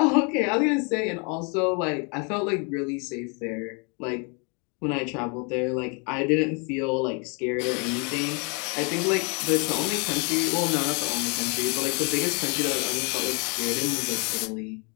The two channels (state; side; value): quieter; right; 34.2 dB